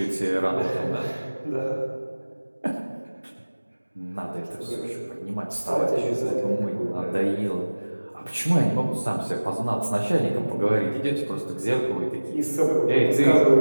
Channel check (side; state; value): both; inverted; correlation -1.00